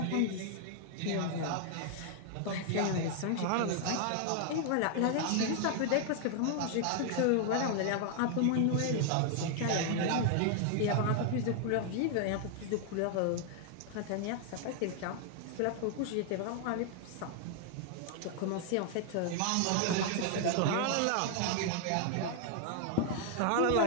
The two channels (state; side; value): different; both; correlation 0.00